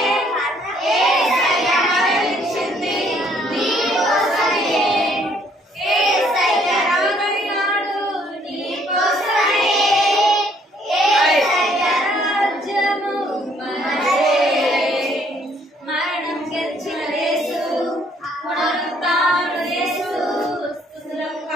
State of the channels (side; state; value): both; normal; correlation 0.64